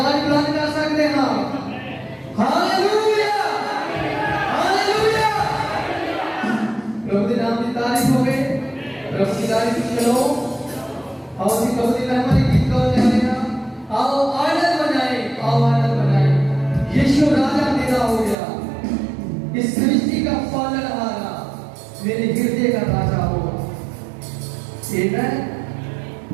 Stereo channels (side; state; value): left; drops out; at 18.4 s